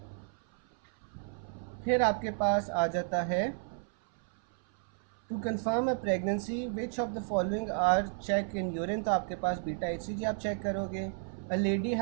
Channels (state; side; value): silent; left; 56 dB below the other